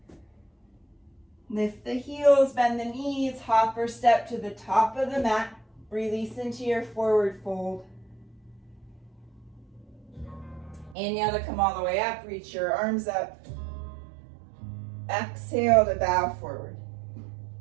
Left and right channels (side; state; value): left; drops out; at 11.0 s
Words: Lift the heels, bend the knees, hop or step to the top of the mat. Release into your forward fold. Inhale to come all the way up, reach your arms up. Exhale to bow forward.